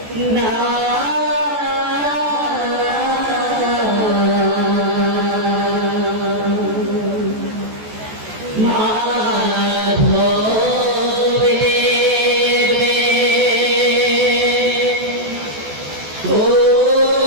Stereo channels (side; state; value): left; late; 14 ms